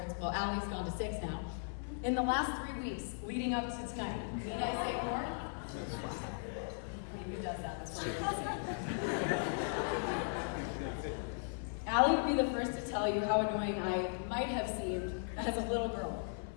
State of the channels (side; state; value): right; silent; 53 dB below the other